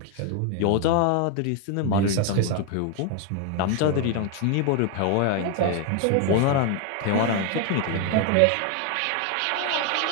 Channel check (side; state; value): both; different; correlation 0.01